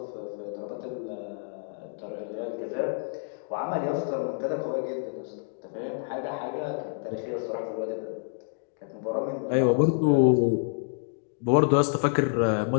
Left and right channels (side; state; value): right; silent; 59 dB below the other